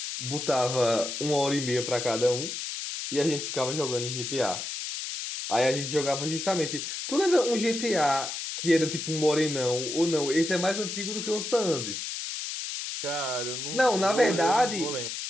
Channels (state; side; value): noise; left; hiss, 5 dB below the sound